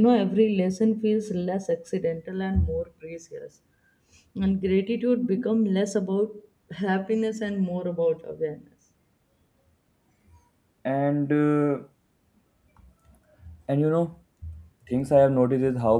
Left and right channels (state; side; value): identical; both; correlation 1.00